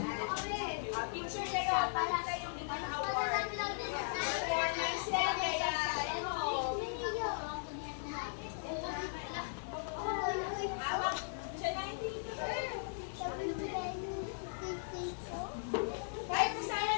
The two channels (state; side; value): silent; right; digital silence